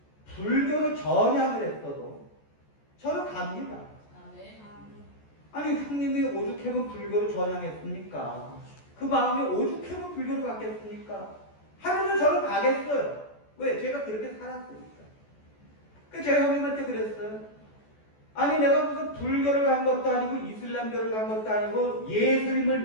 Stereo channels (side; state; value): right; late; 14 ms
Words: 불교로 전향을 했어도 저는 갑니다. 아니 형님이 오죽하면 불교로 전향했습니까? 그 마음이 오죽하면 불교로 갔겠습니까? 하면서 저는 가겠어요. 왜? 제가 그렇게 살았으니까. 그래서 제가 형님한테 그랬어요. 아니 내가 무슨 불교를 간 것도 아니고 이슬람교를 간 것도 아니고 예수님을